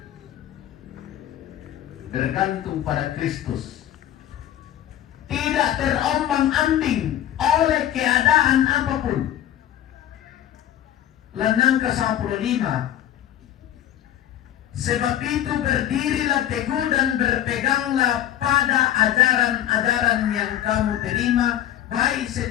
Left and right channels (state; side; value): quieter; right; 11.9 dB